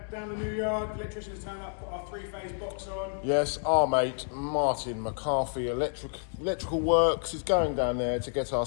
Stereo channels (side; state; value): right; silent; 58 dB below the other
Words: down the new yard. Electrician's turned up, put our 3-phase box on. Yes, our mate Martin McCarthy Electrical Works is going down there to get